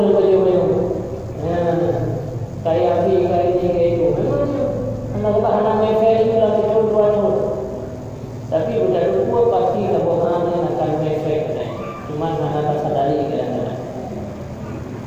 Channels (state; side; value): identical; both; correlation 1.00